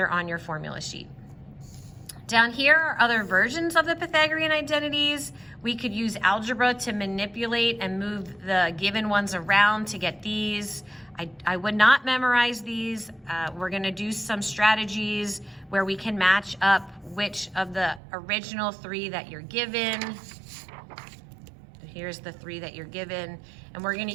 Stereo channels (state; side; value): drops out; left; at 18.0 s